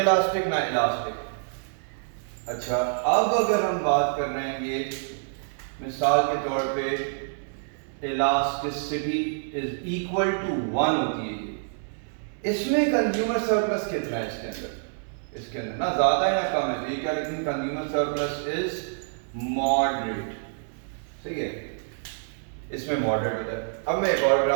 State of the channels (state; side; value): silent; left; 60 dB below the other